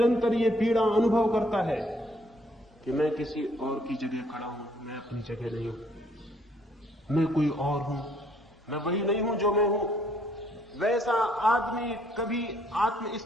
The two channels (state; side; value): normal; both; correlation 0.66